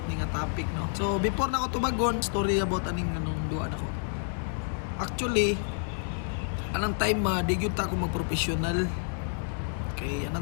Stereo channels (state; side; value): silent; right; 58 dB below the other